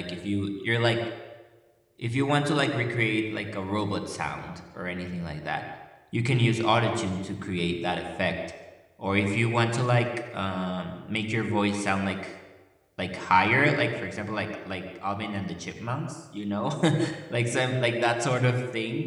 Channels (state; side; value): identical; both; correlation 1.00